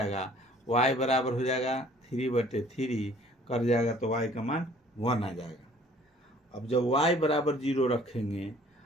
y बराबर हो जाएगा 3/3 कर जाएगा तो y का मान 1 आ जाएगा। अब जब y बराबर 0 रखेंगे,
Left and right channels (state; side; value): normal; both; correlation 0.55